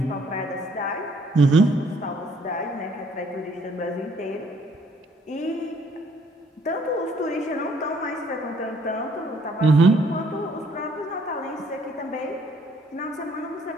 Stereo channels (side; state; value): both; normal; correlation 0.63